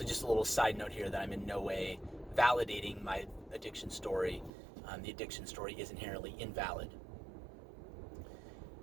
just a little side note here that I'm in no way validating my addiction story. The addiction story is inherently invalid.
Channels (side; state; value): left; drops out; at 4.5 s